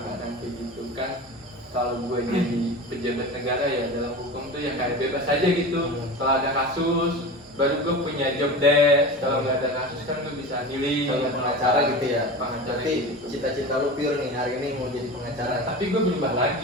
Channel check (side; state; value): both; normal; correlation 0.30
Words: Bukan kayak gitu kan. Kalau gue jadi pejabat negara ya dalam hukum tuh ya kayak bebas aja gitu. Kalau ada kasus baru gue punya job desk. Kalau nggak ada kasus kan gue bisa milih. Kalau pengacara gitu ya? Pengacara Berarti gitu. cita-cita lu pure nih hari ini mau jadi pengacara. Tapi gue berubah